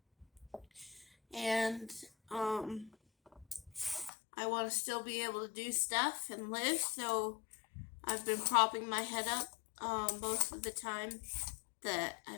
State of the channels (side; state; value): right; drops out; at 4.1 s